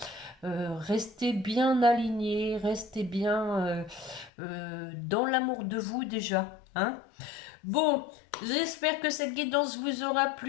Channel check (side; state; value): right; drops out; at 4.3 s